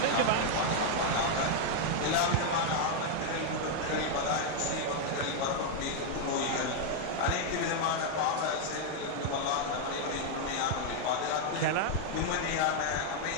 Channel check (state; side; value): different; both; correlation 0.00